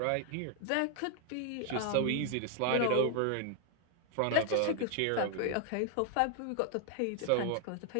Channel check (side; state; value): both; different; correlation 0.00